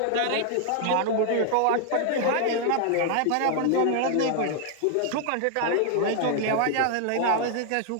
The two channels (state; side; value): different; both; correlation 0.00